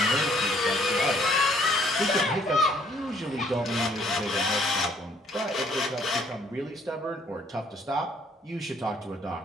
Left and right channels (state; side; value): normal; both; correlation 0.63